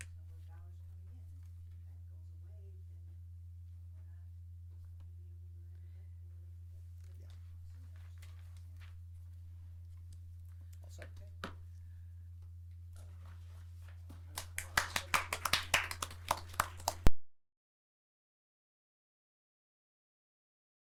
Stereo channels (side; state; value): both; identical; correlation 1.00